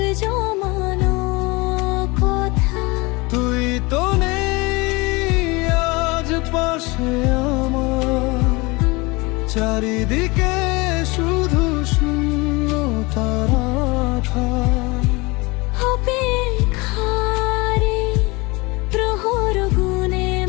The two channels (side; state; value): right; quieter; 24.8 dB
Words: জমানো কথা। তুই তো নেই আজ পাশে আমার, চারিদিকে শুধু শূন্যতা রাখা। অপেক্ষারে প্রহর গুনে